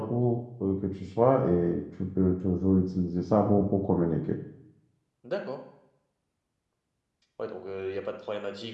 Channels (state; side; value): identical; both; correlation 1.00